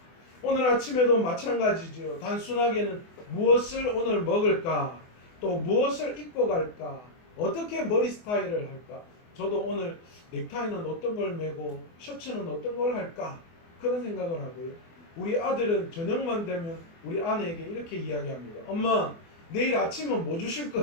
오늘 아침에도 마찬가지죠. 단순하게는 무엇을 오늘 먹을까, 또 무엇을 입고 갈까, 어떻게 머리 스타일을 할까. 저도 오늘 넥타이는 어떤 걸 매고 셔츠는 어떤 걸 할까 그런 생각을 하고요. 우리 아들은 저녁만 되면 우리 아내에게 이렇게 이야기합니다. 엄마, 내일 아침은 뭐 주실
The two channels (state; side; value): late; right; 24 ms